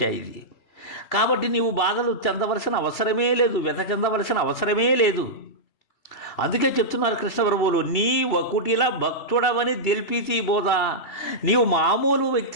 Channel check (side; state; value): right; late; 3.0 ms